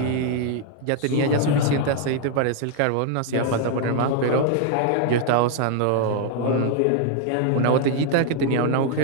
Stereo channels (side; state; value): both; different; correlation 0.00